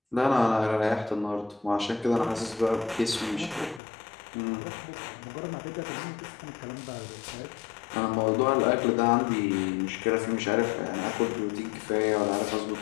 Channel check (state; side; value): drops out; right; at 3.8 s